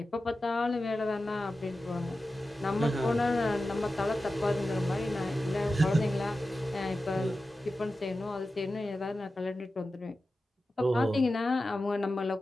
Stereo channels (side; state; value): both; normal; correlation 0.93